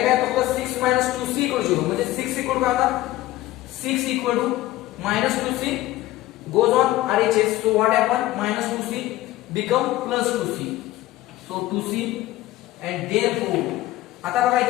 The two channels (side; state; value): right; quieter; 16.2 dB